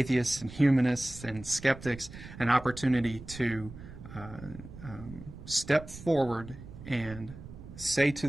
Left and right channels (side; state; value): right; noise; rumble, 15 dB below the sound